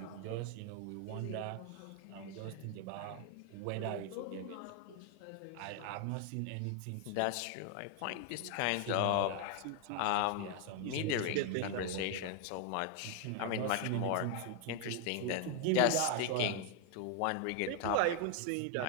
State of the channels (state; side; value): different; both; correlation 0.00